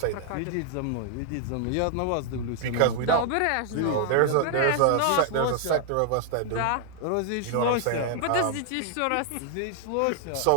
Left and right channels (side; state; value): both; different; correlation 0.00